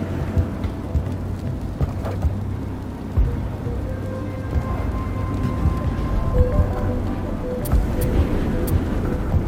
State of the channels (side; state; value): both; identical; correlation 1.00